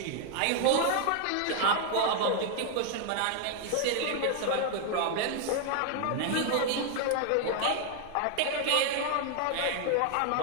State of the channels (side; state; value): both; different; correlation 0.00